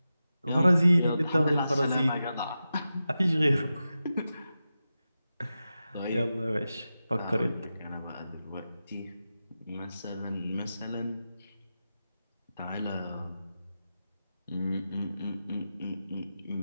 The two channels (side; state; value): both; inverted; correlation -0.92